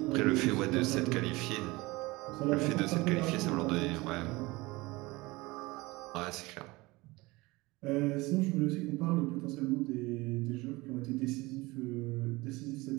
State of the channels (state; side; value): quieter; left; 22.1 dB